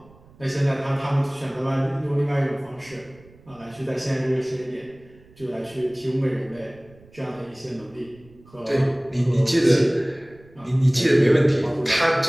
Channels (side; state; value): right; noise; rumble, 26 dB below the sound